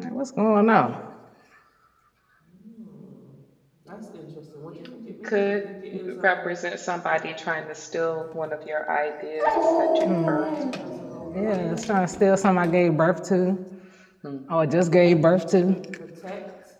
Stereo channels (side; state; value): both; identical; correlation 1.00